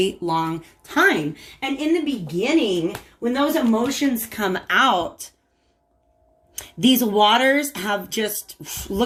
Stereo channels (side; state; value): both; identical; correlation 1.00